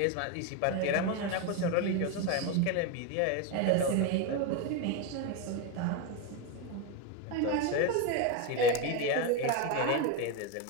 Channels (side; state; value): both; different; correlation 0.03